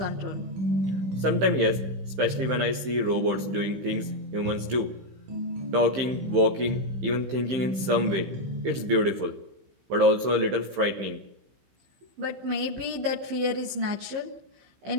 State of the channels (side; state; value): left; late; 15 ms